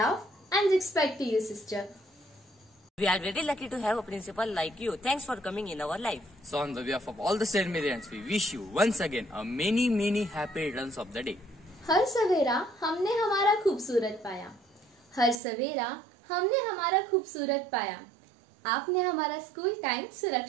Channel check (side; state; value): left; drops out; at 15.4 s